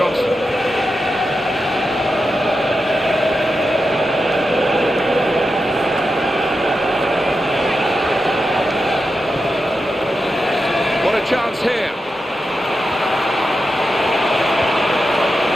What a chance here.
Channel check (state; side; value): normal; both; correlation 0.89